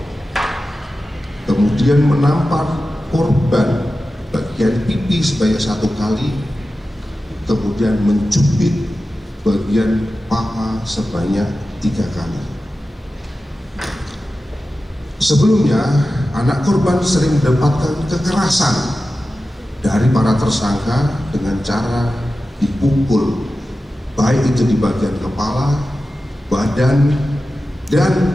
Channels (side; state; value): both; normal; correlation 0.94